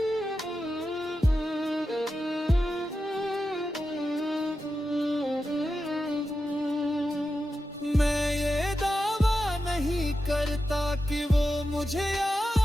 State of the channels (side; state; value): both; normal; correlation 0.90